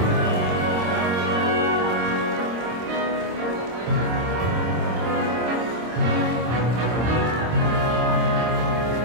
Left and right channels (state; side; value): late; left; 26 ms